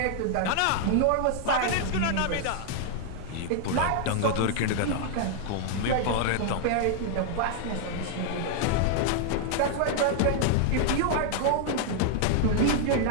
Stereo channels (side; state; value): both; different; correlation 0.00